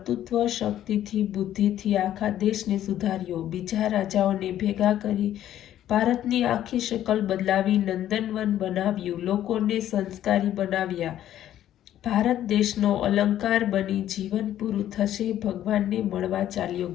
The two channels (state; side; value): quieter; right; 11.9 dB